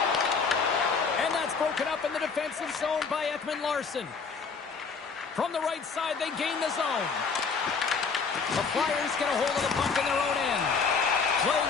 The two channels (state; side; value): quieter; right; 5.2 dB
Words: And that's broken up in the defensive zone by Ekman-Larsson. From the right side, they gain the zone. The Flyers get a hold of the puck in their own end. Play